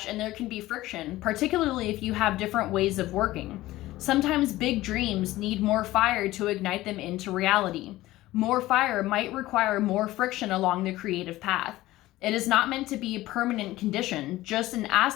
and there can be friction, particularly if you have different ways of working. Sometimes big dreams need more fire to ignite them into reality. More fire might require more friction along the creative path. It is not meant to be a permanent condition, just an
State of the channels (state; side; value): quieter; right; 16.9 dB